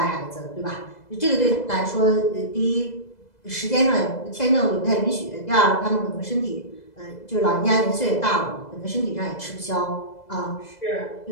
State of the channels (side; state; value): right; late; 2.0 ms